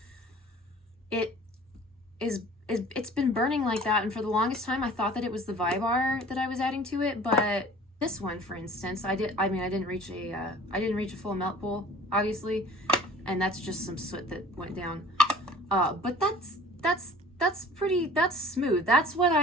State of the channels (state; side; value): normal; both; correlation 0.47